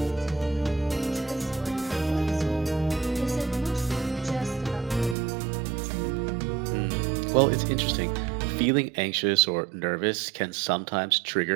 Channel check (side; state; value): left; drops out; at 5.2 s